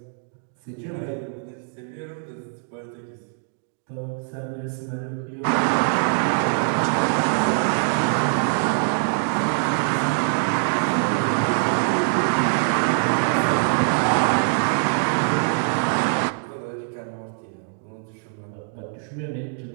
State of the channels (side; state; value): left; silent; 61 dB below the other